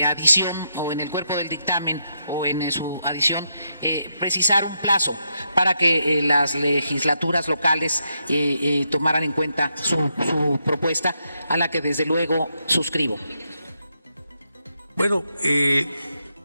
adición o en el cuerpo del dictamen o en su adición, precisar un plazo para que las legislaturas locales tomaran en cuenta su propuesta, a la que desde luego suscribo. Bueno,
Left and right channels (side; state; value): both; inverted; correlation -0.81